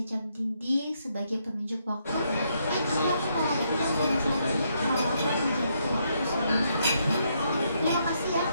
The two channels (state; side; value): inverted; both; correlation -0.76